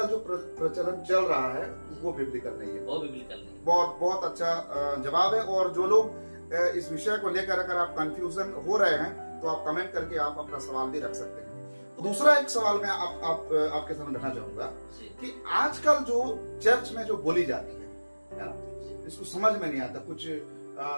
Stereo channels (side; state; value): both; inverted; correlation -1.00